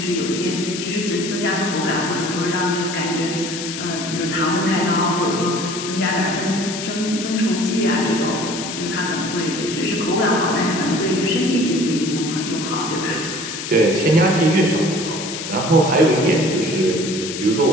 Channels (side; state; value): left; noise; hiss, 7 dB below the sound